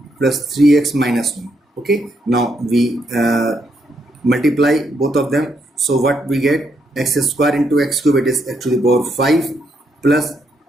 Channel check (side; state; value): both; normal; correlation 0.77